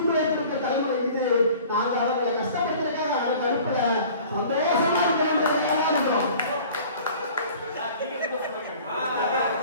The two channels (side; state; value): both; inverted; correlation -0.47